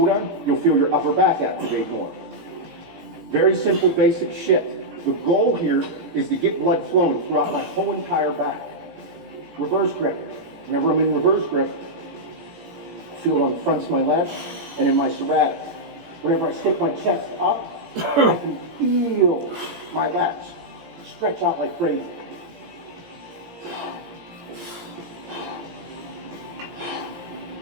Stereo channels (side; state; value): left; late; 18 ms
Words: on, you'll feel your upper back activate more. Very simple, basic shit. The goal here is to get blood flowing throughout my whole entire back. Reverse grip. Whenever I'm in reverse grip, I feel it on the fronts of my lats and in my serratics. Whenever I stick my chest up, I can feel my lats stretch out like crazy.